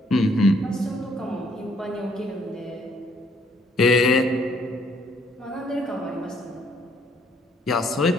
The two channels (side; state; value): both; normal; correlation 0.66